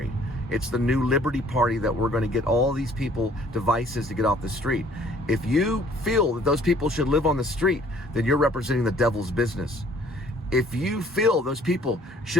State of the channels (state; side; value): normal; both; correlation 0.57